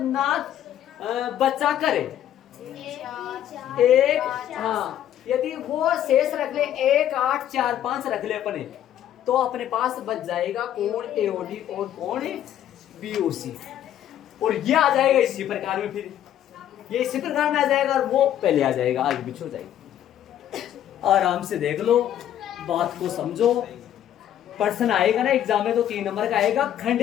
बचा करे एक, हाँ यदि वो शेष रख ले 1 8 4 5 रख ले अपने, तो अपने पास बच जाएगा कोण एओडी और कोण बीओसी, और ये आ जाएगा इसी प्रकार में, फिर ये इसी प्रकार में आ जाएगा और वो पहले आ जाएगा, आगे पीछे हो जाएगा। आराम से देख लो, बात को समझो, प्रश्न आएगा ना एग्जाम में तो 3 नंबर का आएगा,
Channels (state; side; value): quieter; right; 11.1 dB